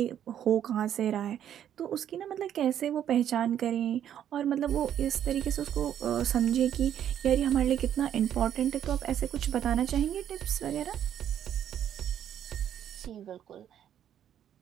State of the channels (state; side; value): quieter; left; 10.1 dB